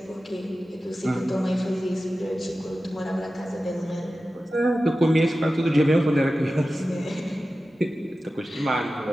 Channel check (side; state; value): both; normal; correlation 0.94